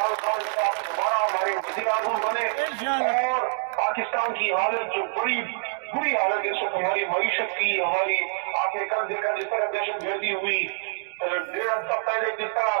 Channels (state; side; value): silent; left; digital silence